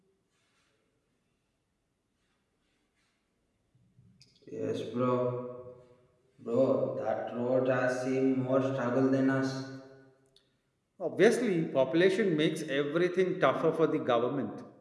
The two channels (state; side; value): identical; both; correlation 1.00